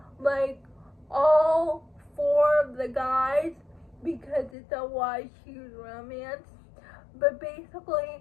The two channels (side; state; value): right; drops out; at 4.5 s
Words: like all four of the guys, because it's a YA romance. But